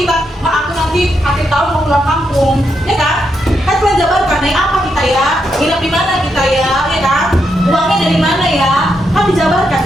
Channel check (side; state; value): both; normal; correlation 0.81